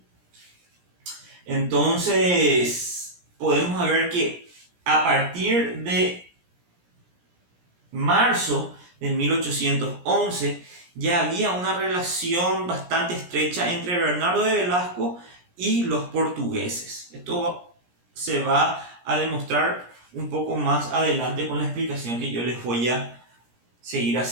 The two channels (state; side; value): late; left; 17 ms